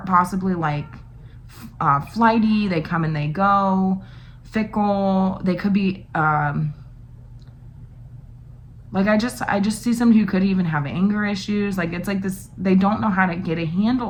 like flighty. They come and they go. Fickle. They could be like I just see somebody who could even have anger issues. Like it's like this, they don't know how to get a handle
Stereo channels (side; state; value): both; identical; correlation 1.00